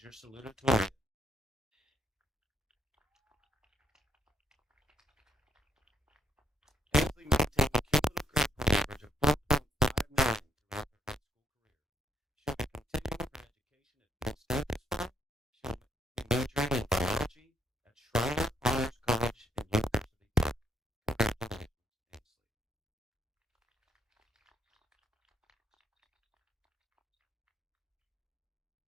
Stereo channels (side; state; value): both; normal; correlation 0.73